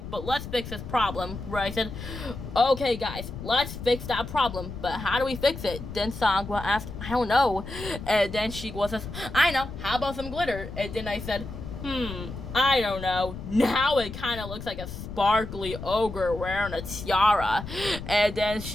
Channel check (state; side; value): noise; left; rumble, 10 dB below the sound